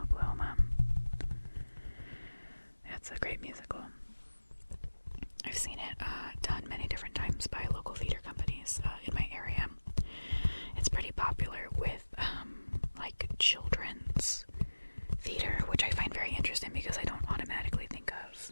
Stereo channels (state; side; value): inverted; both; correlation -1.00